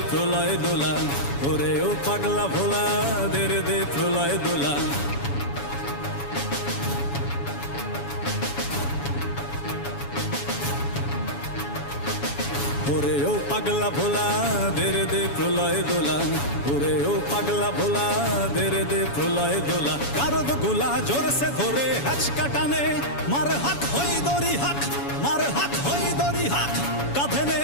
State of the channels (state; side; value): late; right; 7.1 ms